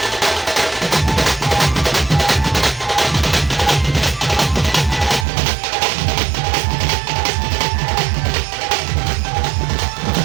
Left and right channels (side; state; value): left; drops out; at 5.2 s